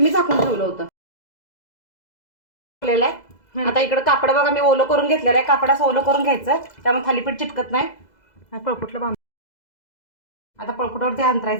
झाकून ठेवलं होतं। आता इकडे कापड बघा मी ओलं करून घेतलेलं आहे। कापडाचं ओलं करून घ्यायचं, त्यामुळे थालीपीठ चिटकत नाही। पळपुटलं बांध, आता पळपुटावरती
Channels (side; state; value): right; late; 2.0 ms